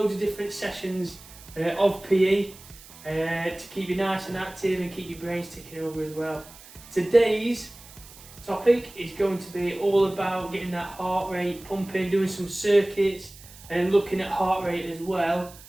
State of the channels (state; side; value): noise; right; hiss, 20 dB below the sound